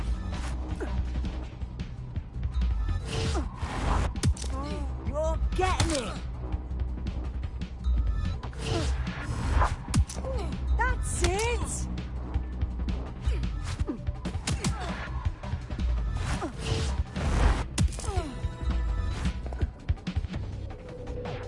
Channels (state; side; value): identical; both; correlation 1.00